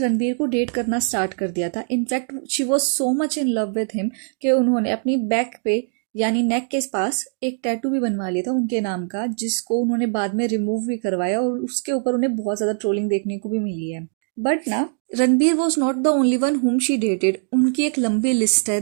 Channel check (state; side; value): silent; left; 64 dB below the other